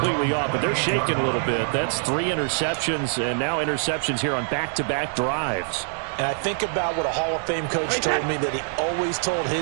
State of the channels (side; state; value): left; silent; digital silence